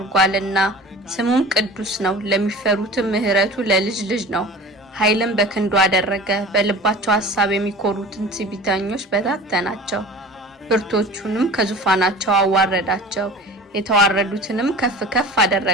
ስሙም ቅዱስ ነው። ለሚፈሩትም ምሕረቱ ለልጅ ልጅ ነው። ኃይልም በክንዱ አደረገ። በልባቸው ሐሳብ የሚኮሩትን ትዕቢተኞች በታተናቸው። ብርቶቹንም ከዙፋናቸው አዋረዳቸው። የተዋረዱትንም ከፍ ከፍ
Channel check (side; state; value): both; normal; correlation 0.39